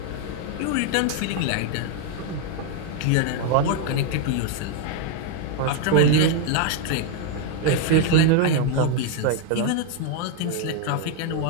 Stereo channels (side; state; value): both; different; correlation 0.01